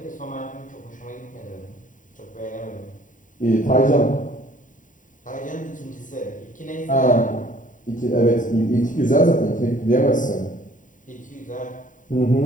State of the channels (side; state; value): right; late; 0.38 ms